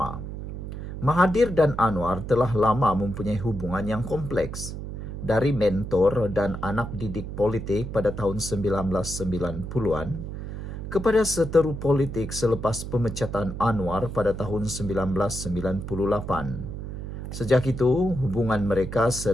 Mahathir dan Anwar telah lama mempunyai hubungan yang kompleks. Dari mentor dan anak didik politik pada tahun 1990-an kepada seteru politik selepas pemecatan Anwar pada tahun 1998. Sejak itu, hubungan mereka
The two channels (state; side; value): noise; right; hum, 7 dB below the sound